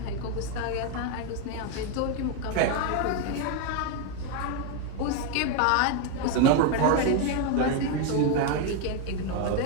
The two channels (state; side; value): different; both; correlation 0.01